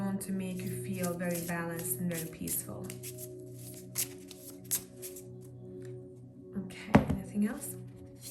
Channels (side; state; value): both; identical; correlation 1.00